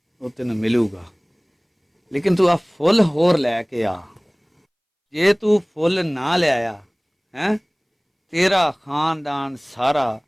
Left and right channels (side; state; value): both; identical; correlation 1.00